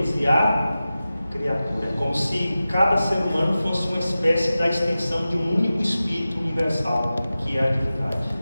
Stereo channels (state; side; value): inverted; both; correlation -0.95